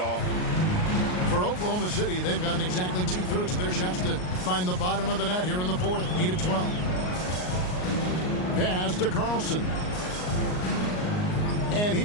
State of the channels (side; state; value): right; late; 38 ms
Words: For Oklahoma City, they've gotten exactly 2/3 of their shots to find the bottom of the net here in the fourth. 8 of 12. Pass to Carlson. And